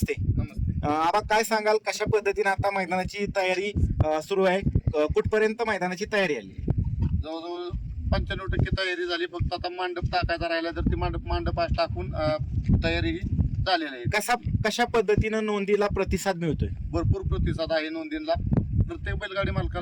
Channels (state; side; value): identical; both; correlation 1.00